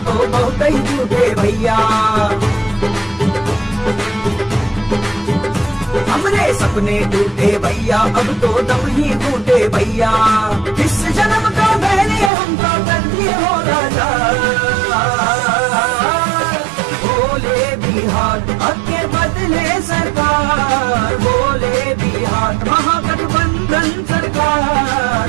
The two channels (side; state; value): left; drops out; at 12.3 s